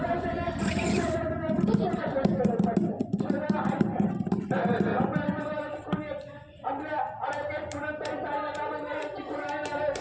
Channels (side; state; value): both; identical; correlation 1.00